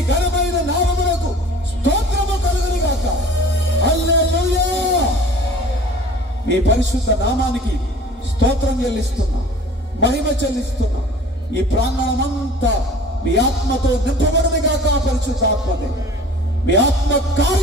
ఘనమైన నామమునకు స్తోత్రము కలుగును గాక. హల్లెలూయా. మీ పరిశుద్ధ నామానికి స్తోత్రం చెల్లిస్తున్నాం, మహిమ చెల్లిస్తున్నాం. ఈ ప్రాంగణమంతా మీ ఆత్మతో నింపబడును గాక. పరిశుద్ధ ఆత్మదే మీ ఆత్మ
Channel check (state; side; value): normal; both; correlation 0.45